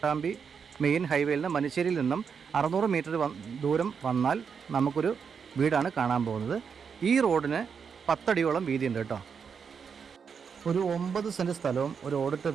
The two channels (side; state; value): left; quieter; 6.4 dB